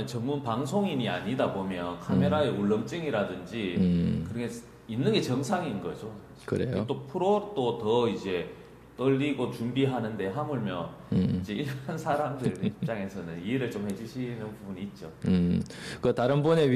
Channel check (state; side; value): identical; both; correlation 1.00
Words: 전문 방송인이 아니다 보면 카메라의 울렁증이라든지 그런 게 있는 게 정상인 거죠. 그래요? 또 프로도 더 이제 떨리고 준비하는데 하물며 이제 이런 사람들 입장에서는 이해를 좀 해주시는 부분이 있죠. 그 다른 분에